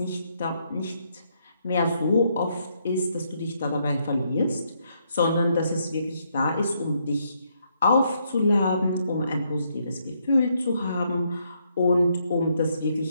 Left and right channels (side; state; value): both; inverted; correlation -0.75